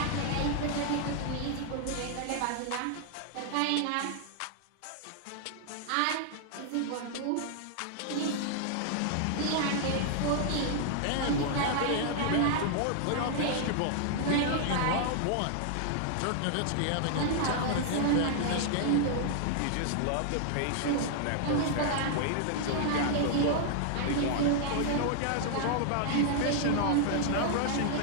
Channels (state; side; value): different; both; correlation -0.01